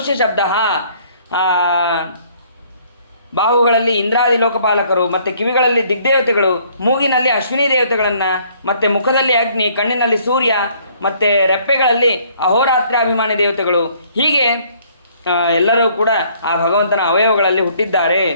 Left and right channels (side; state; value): both; inverted; correlation -0.62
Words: ಶಬ್ದ, ಬಾಹುಗಳಲ್ಲಿ ಇಂದ್ರಾದಿ ಲೋಕಪಾಲಕರು, ಮತ್ತು ಕಿವಿಗಳಲ್ಲಿ ದಿಗ್ದೇವತೆಗಳು, ಮೂಗಿನಲ್ಲಿ ಅಶ್ವಿನಿ ದೇವತೆಗಳನ್ನು, ಮತ್ತು ಮುಖದಲ್ಲಿ ಅಗ್ನಿ, ಕಣ್ಣಿನಲ್ಲಿ ಸೂರ್ಯ, ಮತ್ತು ರೆಪ್ಪೆಗಳಲ್ಲಿ ಅಹೋರಾತ್ರಾಭಿಮಾನಿ ದೇವತೆಗಳು. ಹೀಗೆ ಎಲ್ಲರೂ ಕೂಡ ಆ ಭಗವಂತನ ಅವಯವಗಳಲ್ಲಿ ಹುಟ್ಟಿದ್ದಾರೆ.